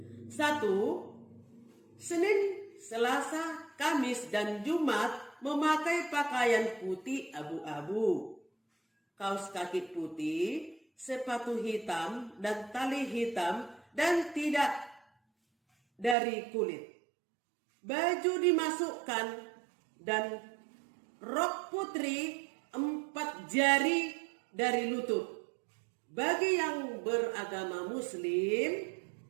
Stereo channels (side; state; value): left; drops out; at 16.2 s